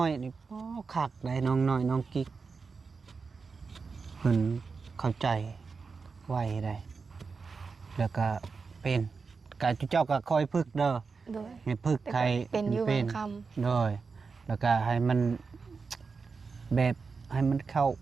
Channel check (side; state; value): left; quieter; 4.8 dB